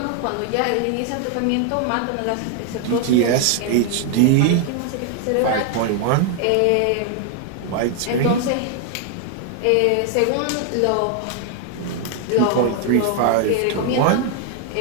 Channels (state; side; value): different; both; correlation 0.00